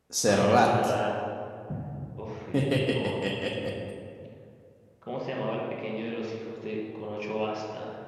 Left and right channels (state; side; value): identical; both; correlation 1.00